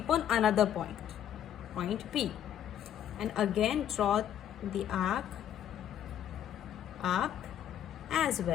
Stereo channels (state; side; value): quieter; right; 10.2 dB